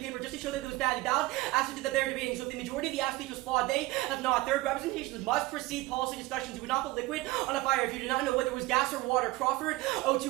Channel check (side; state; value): left; quieter; 19.7 dB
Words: just to show that it was bad. The ballot aspect that they're debating. So if the majority of the app speech was flawed, they have not. Third, representations must precede policy discussions. You would not put liquid on a fire if you do not know whether it was gas or water. Crawford,